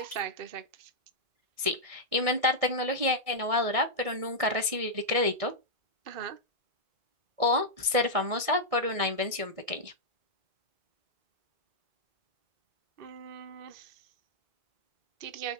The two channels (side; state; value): left; late; 1.7 ms